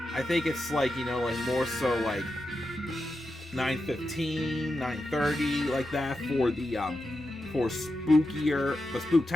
I think it's like, you know, like more so like 9:15, 9:30, like that for the for spookier, but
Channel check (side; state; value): both; normal; correlation 0.89